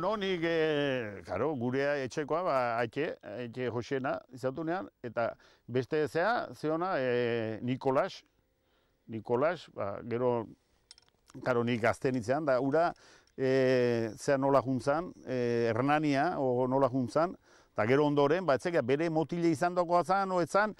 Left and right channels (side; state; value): both; identical; correlation 1.00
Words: nik, karo, gurea etxekoa, etxe Josena izatunean, eta beste zeona, Nikolas, gero, karo, nik gazten itzean, da, ura, nola juntzan, Hernania, nola juntzan, eta gero ondoren, etzeka, bere motile izan dagoa zan, oetzan,